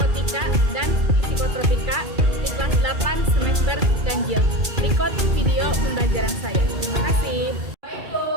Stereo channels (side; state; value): left; late; 2.3 ms